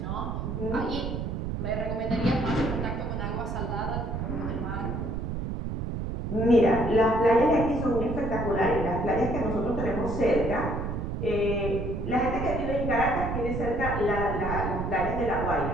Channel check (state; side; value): noise; right; rumble, 3 dB below the sound